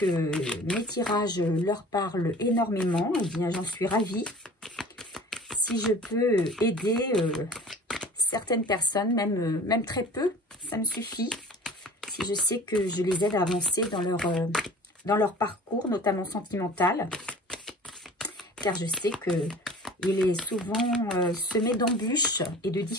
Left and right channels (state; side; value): normal; both; correlation 0.43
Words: mes tirages leur parlent énormément, eh bien j'en suis ravie. Si je peux aider certaines personnes, même très peu, ça me suffit. Si je sais que je les aide à avancer dans leur parcours, notamment sentimental, car je sais qu'il est souvent semé d'embûches et de